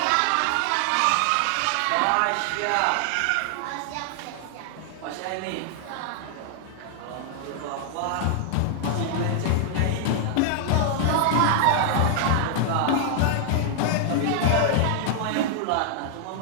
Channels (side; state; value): both; different; correlation 0.00